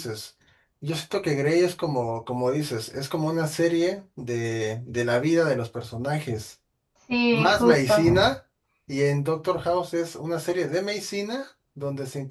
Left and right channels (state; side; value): identical; both; correlation 1.00